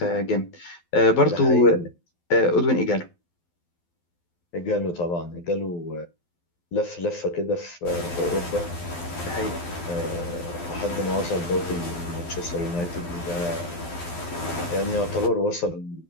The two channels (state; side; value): late; right; 12 ms